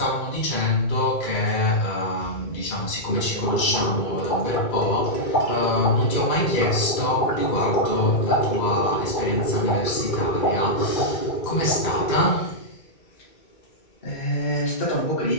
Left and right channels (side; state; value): right; late; 2.2 ms